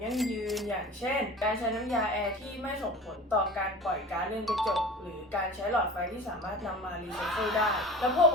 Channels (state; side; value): normal; both; correlation 0.37